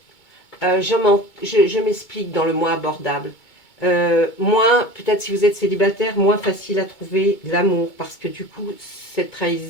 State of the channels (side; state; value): right; late; 2.2 ms